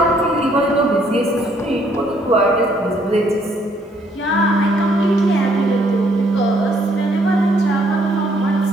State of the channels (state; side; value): normal; both; correlation 0.67